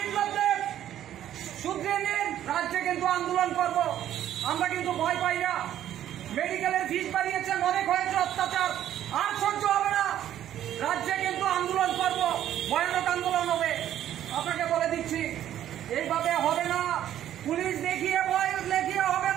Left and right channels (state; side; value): quieter; left; 11.5 dB